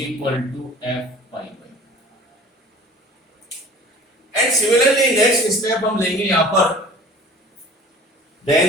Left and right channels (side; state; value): both; normal; correlation 0.45